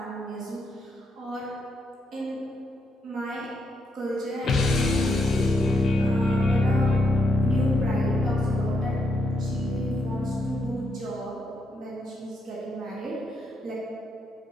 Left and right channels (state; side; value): normal; both; correlation 0.79